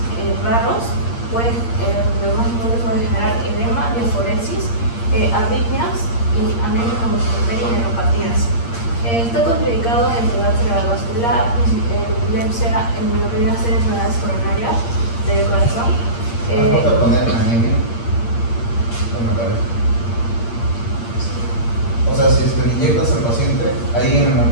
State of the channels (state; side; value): late; right; 8.6 ms